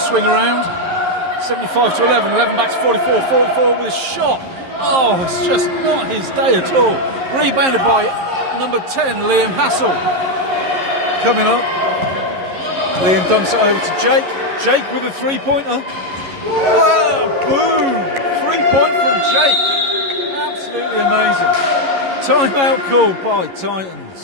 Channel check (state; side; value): late; left; 11 ms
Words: around. 75 to 11. 11 back to 44. 44 with a shot. Oh, it's just not his day at all. Rebounded by number 10, Liam Hassel. Coming up. Liam dumps it over to Jake. Jake with a three-pointer. Oh, boom! 3-point from Jake. Absolutely amazing. Timeout called by